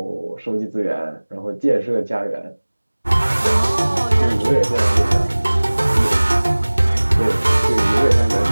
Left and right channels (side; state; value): both; inverted; correlation -1.00